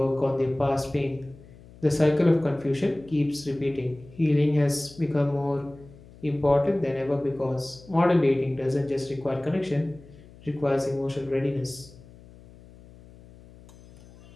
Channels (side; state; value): left; noise; hum, 22 dB below the sound